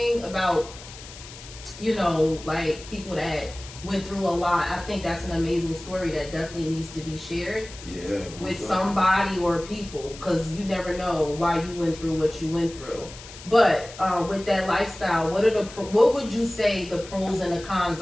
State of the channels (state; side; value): noise; left; hiss, 16 dB below the sound